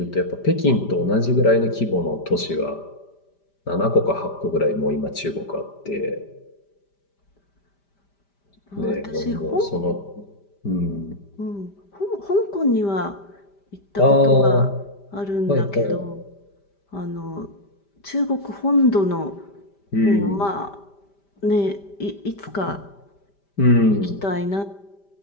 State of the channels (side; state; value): right; late; 5.1 ms